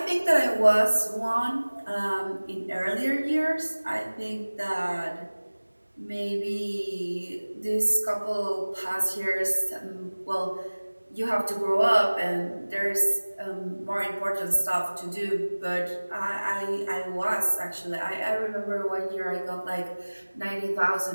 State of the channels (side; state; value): both; inverted; correlation -1.00